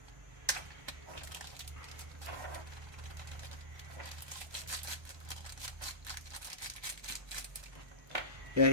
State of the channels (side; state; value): left; late; 1.2 ms